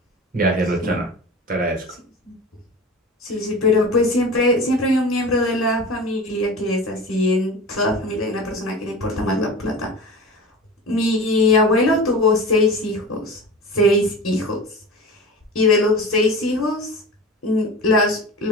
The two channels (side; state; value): both; normal; correlation 0.33